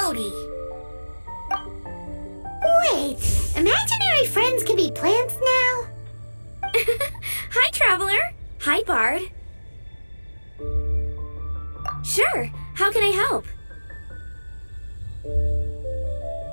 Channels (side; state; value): both; inverted; correlation -1.00